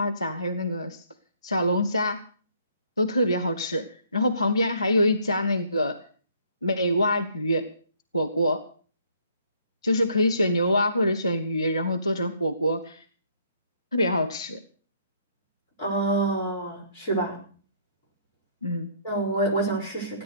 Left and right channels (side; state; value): both; inverted; correlation -0.65